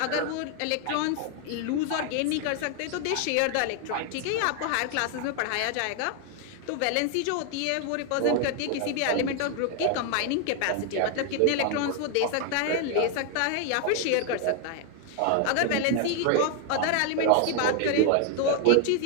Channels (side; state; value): both; different; correlation 0.00